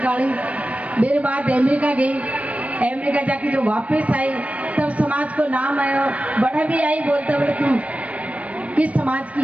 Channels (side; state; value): left; late; 0.066 ms